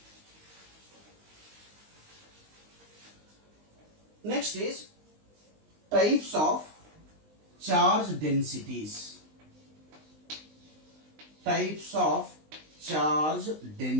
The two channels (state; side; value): late; left; 19 ms